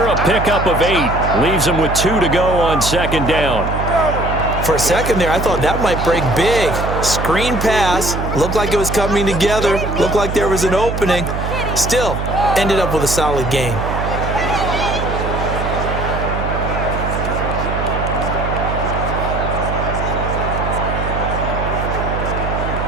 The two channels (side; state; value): right; noise; hum, 4 dB below the sound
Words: a pickup of 8. Leaves him with 2 to go on second down. For a second there, I thought that might break big. Screen pass, looked like it was coming together, looked like there was an opening. Still, ended up with a solid gain.